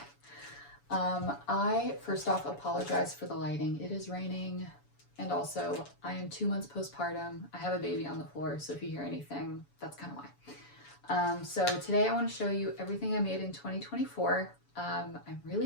I first off apologize for the lighting. It is raining and also I am 2 months postpartum. I have a baby on the floor, so if you hear anything, that's kind of why. So today I want to show you everything I made in 2024. I'm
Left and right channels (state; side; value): late; right; 7.0 ms